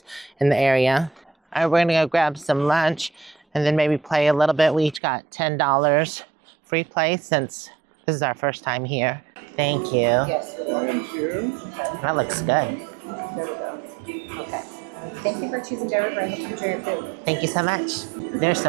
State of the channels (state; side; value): drops out; left; at 5.0 s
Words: in the area. All right, we're gonna go grab some lunch and then maybe play a little bit. We each got $10 free play since this is our first time here. Thank you. Yes. Thank you. That looks good. There we go. Okay. Thank you for choosing Redwood. I hope you enjoy your food. Thank you so much. They're